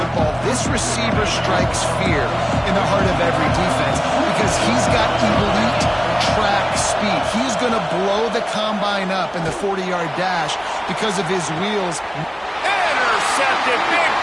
This receiver strikes fear in the heart of every defense because he's got elite track speed. He's going to blow the combine up in the 40-yard dash because of his wheels. Intercepted, big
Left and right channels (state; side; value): identical; both; correlation 1.00